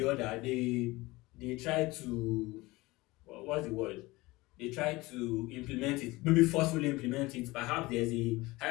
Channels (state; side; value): quieter; right; 21.0 dB